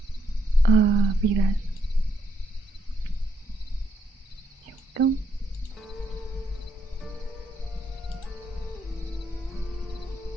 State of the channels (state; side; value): normal; both; correlation 0.76